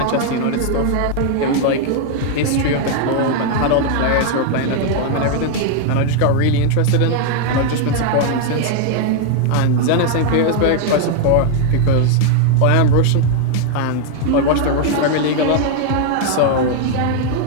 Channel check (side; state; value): both; different; correlation 0.00